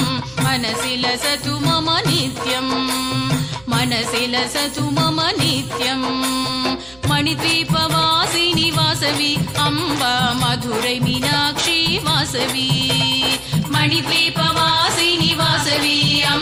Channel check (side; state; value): right; noise; hum, 26 dB below the sound